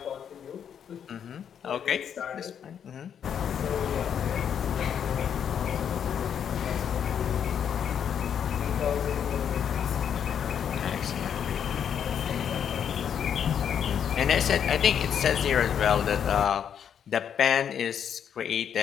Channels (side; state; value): right; quieter; 8.4 dB